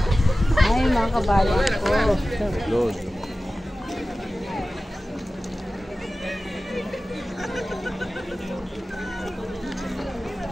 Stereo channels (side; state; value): both; normal; correlation 0.95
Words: Ay mga kabayan ko. Lord.